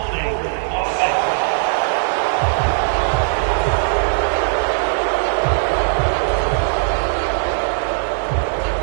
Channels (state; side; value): silent; left; digital silence